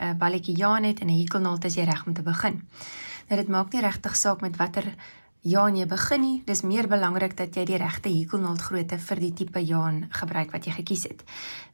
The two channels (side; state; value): both; inverted; correlation -1.00